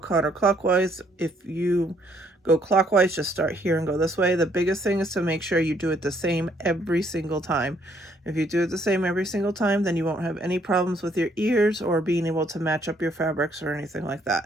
counterclockwise. If you go clockwise, just start here and go this way. The biggest thing is to make sure you do it the same every single time. If you do it the same every single time, then you won't have any problems with your ears or being able to match up your fabrics or anything like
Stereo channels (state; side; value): normal; both; correlation 0.67